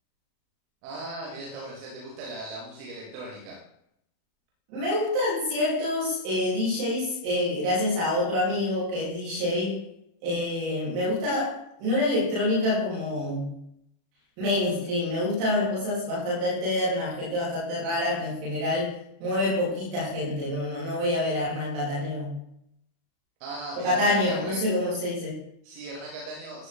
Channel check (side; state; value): left; late; 36 ms